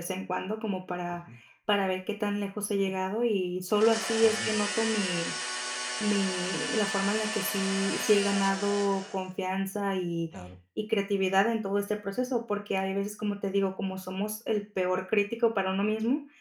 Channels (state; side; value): identical; both; correlation 1.00